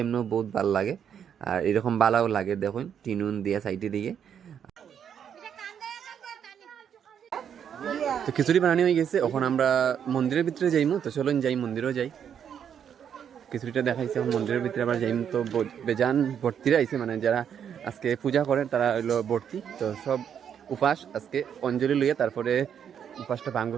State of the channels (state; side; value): quieter; left; 8.4 dB